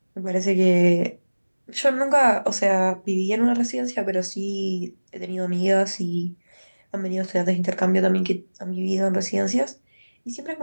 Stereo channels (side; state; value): both; inverted; correlation -1.00